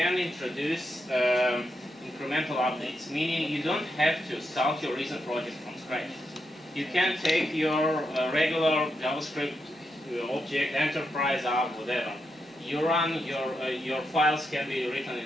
introduce incremental updates, meaning you don't have to start your Reason project from scratch. You can take your regular JavaScript object, enterprise app, whatever. You run your files can be written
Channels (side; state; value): both; normal; correlation 0.84